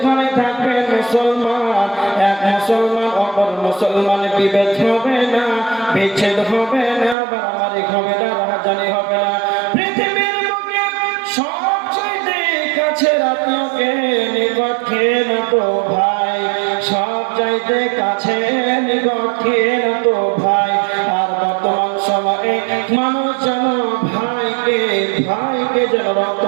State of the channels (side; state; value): left; drops out; at 7.2 s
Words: থাকবে মুসলমান এক মুসলমান অপর মুসলমান বিভেদ হবে না, বিচ্ছেদ হবে না, বাড়াবাড়ি হবে না, রাহাজানি হবে না। পৃথিবীর বুকে সবচাইতে কাছের আত্মীয়কে নিকট খেয়ে না তো ভাই, সব চাইতে কাছে নিকট খেয়ে না তো ভাই। আর বর্তমান সময়ে মানুষ যেন ভাইকে যেন